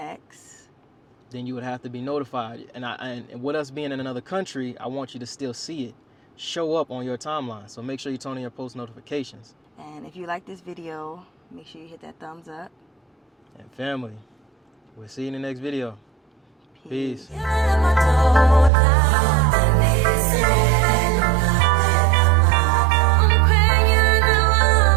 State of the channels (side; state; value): left; drops out; at 18.7 s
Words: then you would have to be notified. And with us being in another country, I want you to still see it show up on your timeline. So make sure you turn on your post notifications. And if you like this video, make sure you hit that thumbs up. And family, we'll see you in the next video. Peace. Peace.